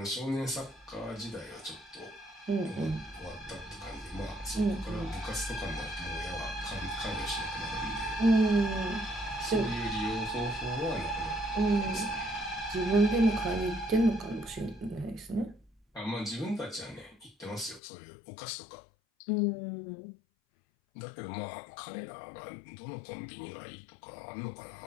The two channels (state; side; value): drops out; right; at 17.8 s